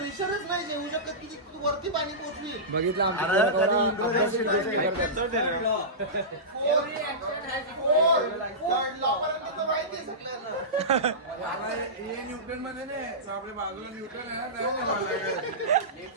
नाही जेवू शकत की तू वरती पाणी पोचली. बघितलं आमच्या माहिती आहे सगळ्यांना. न्यूटन मध्ये नाही आपल्या बाजूला न्यूटन आहे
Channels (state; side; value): normal; both; correlation -0.18